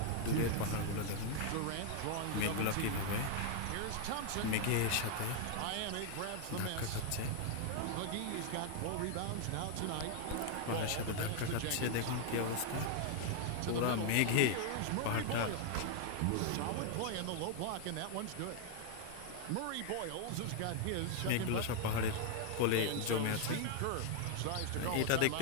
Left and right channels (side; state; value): both; different; correlation 0.00